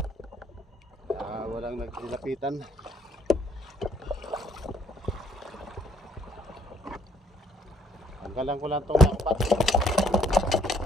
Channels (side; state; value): both; normal; correlation 0.66